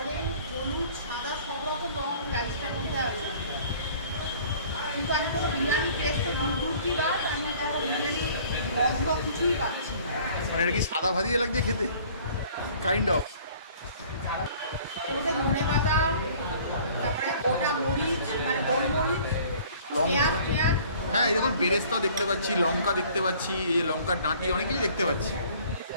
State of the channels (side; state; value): both; inverted; correlation -0.52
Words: হলুদ, সাদা, সব রকম রং রাইসটার মধ্যে আছে। কিন্তু আমি কোনো বিরিয়ানি টেস্ট তো দূর কি বা আমি কোনো বিরিয়ানি গন্ধ কিছুই পাচ্ছি না। মানে এটা কি সাদা ভাজিয়ে লাগছে খেতে, কাইন্ড অফ। এর মধ্যে ধনে পাতা, তারপরে গোটা মরিচ, মানে গোলমরিচ, পেঁয়াজ পেঁয়াজ। হ্যাঁ, এই দেখুন বেরেস্তা দেখতে পাচ্ছি, লঙ্কা দেখতে পাচ্ছি, এই লঙ্কার ডাঁটি, অনেক কিছু দেখতে পাচ্ছি।